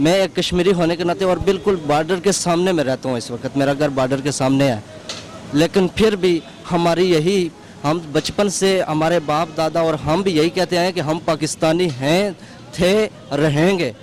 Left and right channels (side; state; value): both; identical; correlation 1.00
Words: मैं एक कश्मीरी होने के नाते और बिल्कुल बॉर्डर के सामने में रहता हूँ इस वक्त, मेरा घर बॉर्डर के सामने है, लेकिन फिर भी हमारी यही, हम बचपन से हमारे बाप दादा और हम भी यही कहते हैं कि हम पाकिस्तानी हैं, थे, रहेंगे,